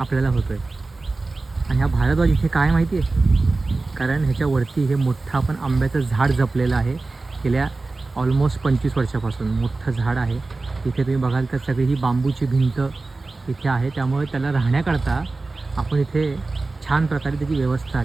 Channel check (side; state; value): left; quieter; 3.5 dB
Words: होतो आहे. आणि हा भारद्वाज इथे काय माहिती आहे, कारण ह्याच्यावरती हे मोठं आपण आंब्याचं झाड जपलेलं आहे. गेल्या ऑलमोस्ट 25 वर्षापासून मोठं झाड आहे. इथे तुम्ही बघाल तर सगळी ही बांबूची भिंत इथे आहे. त्यामुळे त्याला राहण्याकरता आपण इथे छान प्रकारे त्याची व्यवस्था